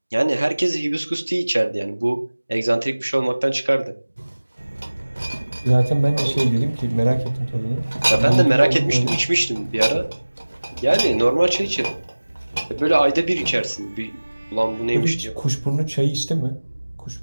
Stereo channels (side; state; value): both; inverted; correlation -1.00